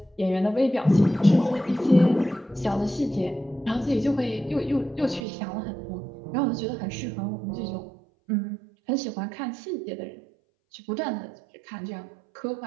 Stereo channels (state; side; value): drops out; left; at 5.2 s